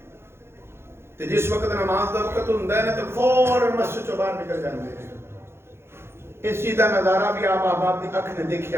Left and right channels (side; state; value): left; late; 0.12 ms